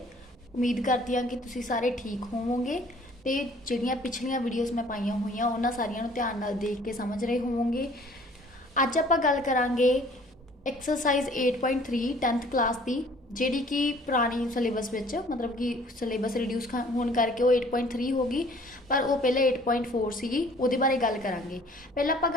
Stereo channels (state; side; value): normal; both; correlation 0.54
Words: ਉਮੀਦ ਕਰਦੀ ਹਾਂ ਕਿ ਤੁਸੀਂ ਸਾਰੇ ਠੀਕ ਹੋਵੋਗੇ ਤੇ ਜਿਹੜੀਆਂ ਪਿਛਲੀਆਂ ਵੀਡੀਓਜ਼ ਮੈਂ ਪਾਈਆਂ ਹੋਈਆਂ ਉਹਨਾਂ ਸਾਰੀਆਂ ਨੂੰ ਧਿਆਨ ਨਾਲ ਦੇਖ ਕੇ ਸਮਝ ਰਹੇ ਹੋਵੋਗੇ। ਅੱਜ ਆਪਾਂ ਗੱਲ ਕਰਾਂਗੇ ਐਕਸਰਸਾਈਜ਼ 8.3 10th ਕਲਾਸ ਦੀ, ਜਿਹੜੀ ਕਿ ਪੁਰਾਣੀ ਸਿਲੇਬਸ ਵਿੱਚ ਮਤਲਬ ਕਿ ਸਿਲੇਬਸ ਰਿਡਿਊਸ ਹੋਣ ਕਰਕੇ ਉਹ 8.3 ਹੋ ਗਈ, ਪਰ ਉਹ ਪਹਿਲੇ 8.4 ਸੀਗੀ। ਉਹਦੇ ਬਾਰੇ ਗੱਲ ਕਰਾਂਗੇ। ਪਹਿਲਾਂ ਆਪਾਂ